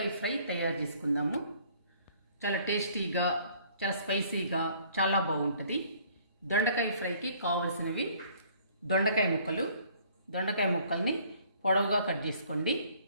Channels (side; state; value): both; inverted; correlation -0.58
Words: ఫ్రై తయారు చేసుకుందాము. చాలా టేస్టీగా, చాలా స్పైసీగా, చాలా బాగుంటుంది. దొండకాయ ఫ్రైకి కావాల్సినవి దొండకాయ ముక్కలు. దొండకాయ ముక్కల్ని పొడవుగా కట్ చేసుకోండి,